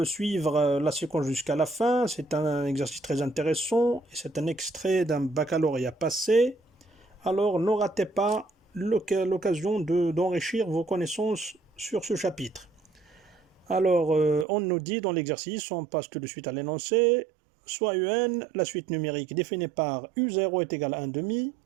suivre la séquence jusqu'à la fin. C'est un exercice très intéressant et c'est un extrait d'un baccalauréat passé. Alors, ne ratez pas l'occasion d'enrichir vos connaissances sur ce chapitre. Alors, on nous dit dans l'exercice, on passe tout de suite à l'énoncé, soit UN, la suite numérique définie par U0 est égal à 1 demi,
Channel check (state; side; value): drops out; left; at 14.5 s